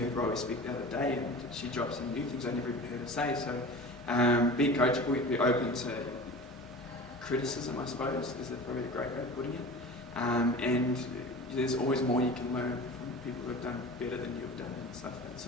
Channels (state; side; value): normal; both; correlation 0.36